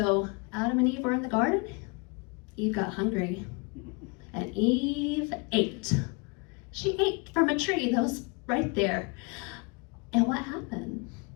Adam and Eve were in the garden. Eve got hungry, and Eve ate. She ate from a tree that was right there. And what happened?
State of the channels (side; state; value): right; quieter; 31.0 dB